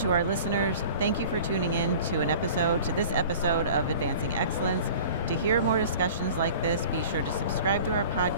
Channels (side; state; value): both; inverted; correlation -0.43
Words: our listeners, thank you for tuning in to this episode of Advancing Excellence. To hear more discussions like this, be sure to subscribe to our